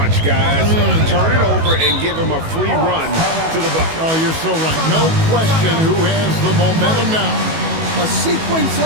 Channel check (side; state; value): left; late; 18 ms